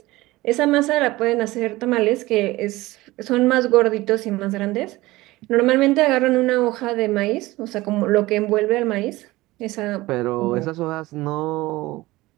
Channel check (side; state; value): left; quieter; 19.1 dB